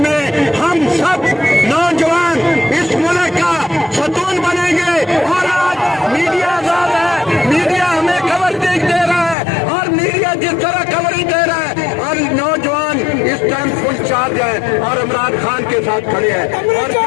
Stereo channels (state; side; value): drops out; right; at 9.3 s